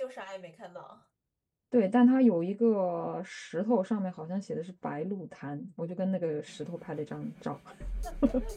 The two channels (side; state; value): both; identical; correlation 1.00